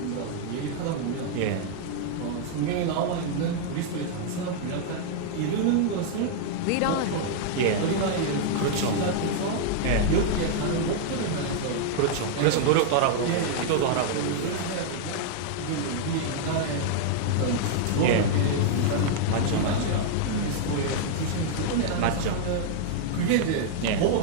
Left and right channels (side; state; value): both; different; correlation -0.01